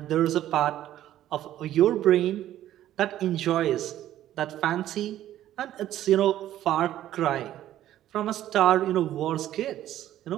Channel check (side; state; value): left; quieter; 12.7 dB